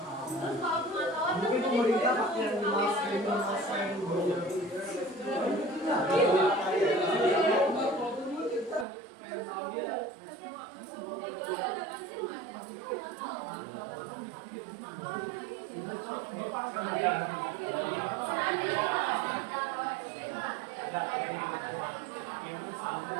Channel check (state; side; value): drops out; left; at 8.8 s